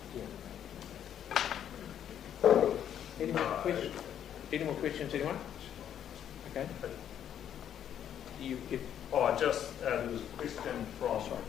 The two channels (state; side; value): quieter; right; 9.7 dB